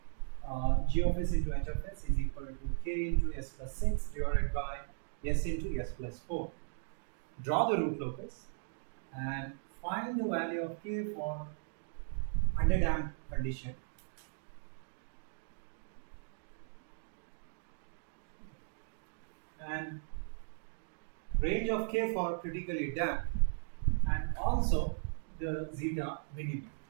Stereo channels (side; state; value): left; silent; digital silence